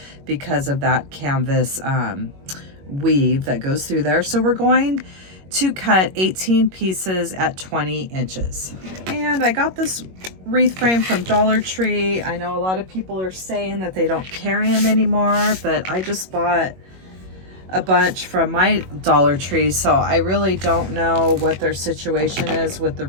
because of that canvas weave that goes through there. So we're going to cut 18 pieces at 20 inches. And I got this wreath frame from Dollar Tree. I know a lot of people are saying that they don't carry them anymore, but I just bought a bunch from my Dollar Tree, so I really don't know what their situation is with the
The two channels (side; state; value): left; late; 21 ms